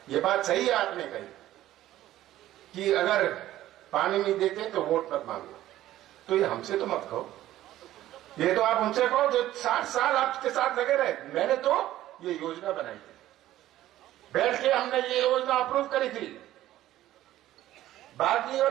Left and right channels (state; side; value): quieter; left; 14.1 dB